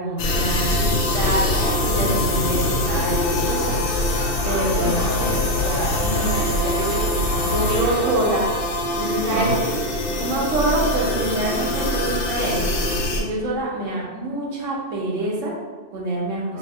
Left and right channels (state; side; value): late; right; 2.6 ms